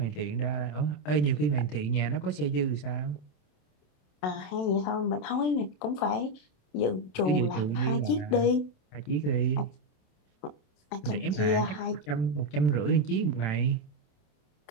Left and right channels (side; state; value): right; late; 27 ms